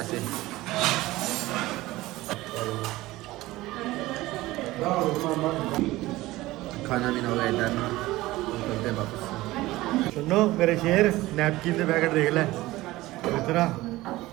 खाना पीना हो गया इधर करते हैं वापस ਸੁਣੋ ਮੇਰੇ ਸ਼ੇਰ ਨੈਪਕਿਨ ਦੇ ਪੈਕਟ ਦੇਖ ਲੈ ਇਤਰਾ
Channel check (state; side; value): quieter; left; 18.2 dB